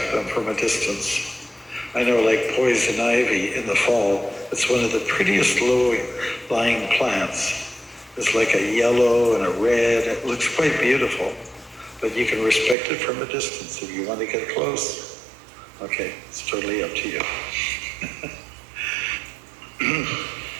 them from a distance. I know, like poison ivy in the fall, it's one of the prettiest low-lying plants. It's like a yellow and a red. It looks quite beautiful. But you can respect it from a distance if you want to get close. Okay, it's totally up to you.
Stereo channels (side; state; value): left; drops out; at 12.8 s